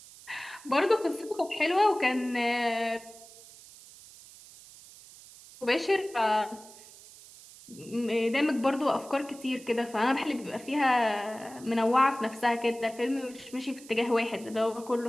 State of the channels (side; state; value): right; noise; hiss, 20 dB below the sound